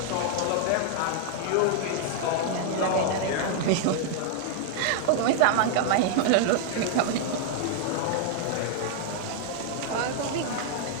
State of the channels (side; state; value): both; different; correlation 0.00